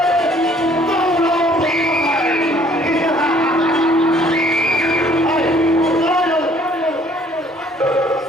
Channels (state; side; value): normal; both; correlation 0.59